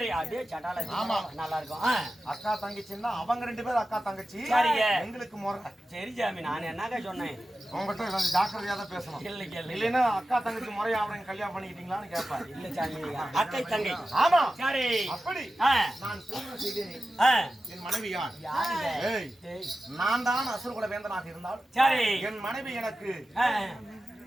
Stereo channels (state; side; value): normal; both; correlation 0.93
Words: அதே சட்டால. ஆமா, நல்லா இருக்கும். அக்கா தங்கச்சின்னா அவங்க 2 பேரும் அக்கா தங்கச்சி. சரிங்க. எங்களுக்கு முறை. சரி சாமி, நான் என்னங்க சொன்னேன்? உங்ககிட்ட கொஞ்சம் ஜாக்கிரதையா தான் பேசணும். இல்லைன்னா அக்கா தங்கச்சி முறையா அவனை கல்யாணம் பண்ணிக்கிட்டீங்களான்னு கேட்பாரு. இல்ல சாமி, அக்கை தங்கை. ஆமா. சரி, அப்படி நான் திருமணம் செய்தேன். என் மனைவி யார்? நான் தான் அசுரகுல வேந்தனாக இருந்தால் சரி, என் மனைவி எனக்கு